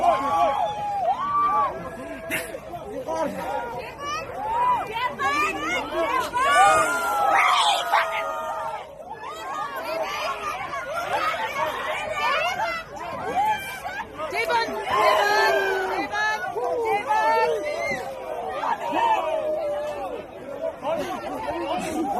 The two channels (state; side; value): identical; both; correlation 1.00